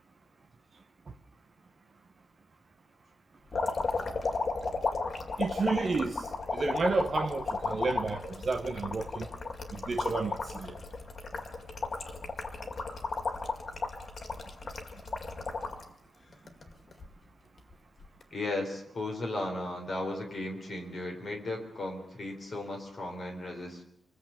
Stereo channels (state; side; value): normal; both; correlation 0.86